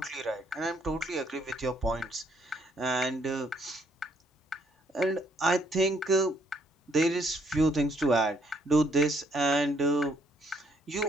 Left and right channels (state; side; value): normal; both; correlation 0.69